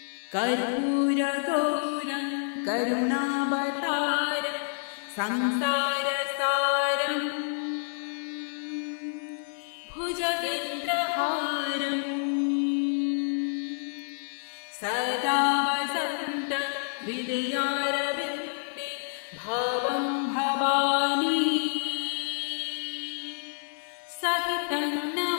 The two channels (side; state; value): right; silent; digital silence